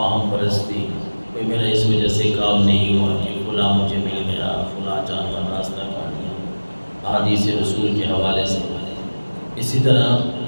پرستی، کوئی میرا اس وجہ سے کام نہیں ہوا کہ فلاں مجھے مل گیا، فلاں جانور راستہ کاٹ گیا، احادیث رسول کے حوالے سے۔ اسی طرح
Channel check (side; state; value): both; inverted; correlation -1.00